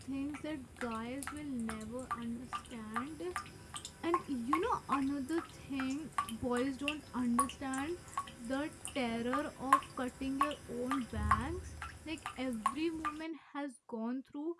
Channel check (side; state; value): both; identical; correlation 1.00